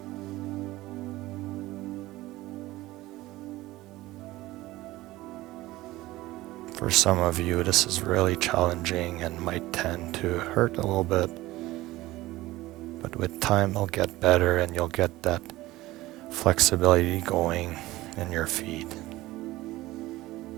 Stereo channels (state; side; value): quieter; left; 18.0 dB